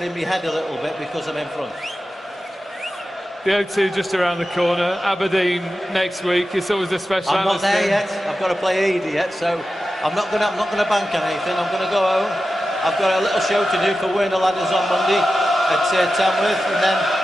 in my head a little bit because I'm in front. The O2 just around the corner. Aberdeen next week. It's always a special. I'm not there yet. I've got to play Edie yet, so I'm not gonna bank on anything. I'm gonna go home. I've got a little show to do for Werner Ladders on Monday at Tamworth, and then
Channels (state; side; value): normal; both; correlation 0.93